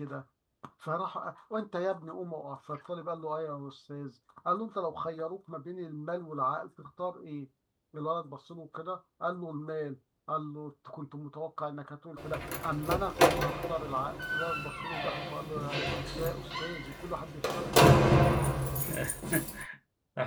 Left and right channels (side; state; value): both; identical; correlation 1.00